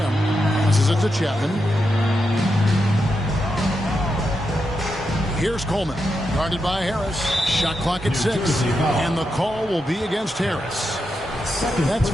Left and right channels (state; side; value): normal; both; correlation 0.86